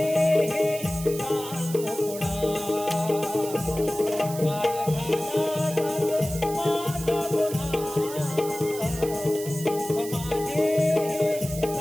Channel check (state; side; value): noise; right; hiss, 11 dB below the sound